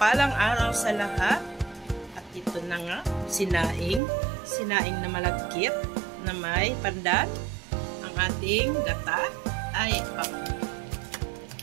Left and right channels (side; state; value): left; drops out; at 4.0 s